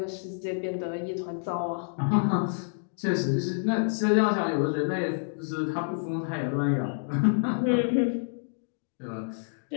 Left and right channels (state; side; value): silent; right; digital silence